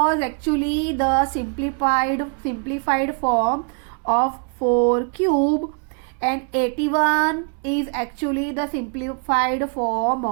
actually the simplified form of 4 cube, and 81 is actually the simplified form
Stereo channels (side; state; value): left; quieter; 39.3 dB